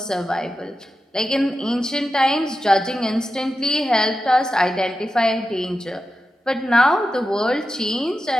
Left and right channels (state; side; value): normal; both; correlation 0.91